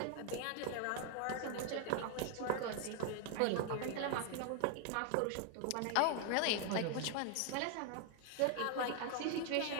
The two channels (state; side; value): different; both; correlation 0.00